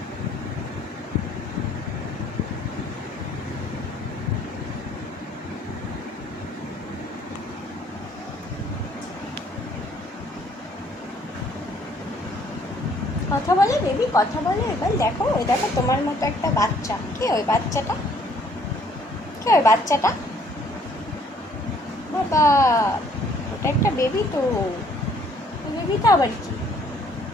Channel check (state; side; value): normal; both; correlation 0.62